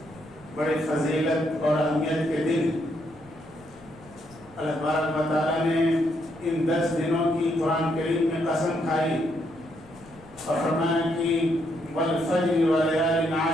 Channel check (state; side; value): noise; left; rumble, 24 dB below the sound